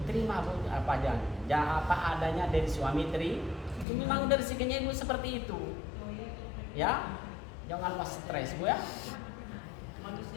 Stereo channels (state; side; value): drops out; right; at 3.9 s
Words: terima Bu apa aja. Apa adanya dari suami itu memang dari rezekinya Ibu seperti itu. Ya, jangan pas stres Bu ya.